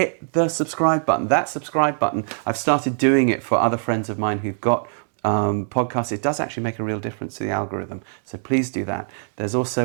the subscribe button. That subscribe button, I've started doing it for other friends of mine who've got podcasts. It does actually make a real difference to the algorithm. So please do that. There's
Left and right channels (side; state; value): left; silent; digital silence